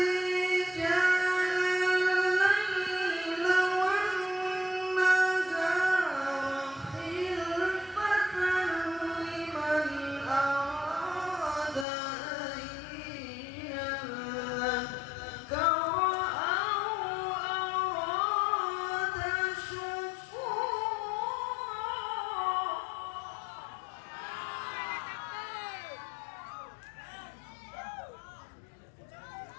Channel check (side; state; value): right; drops out; at 11.9 s